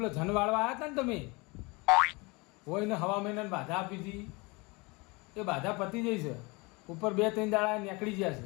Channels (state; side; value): quieter; right; 26.6 dB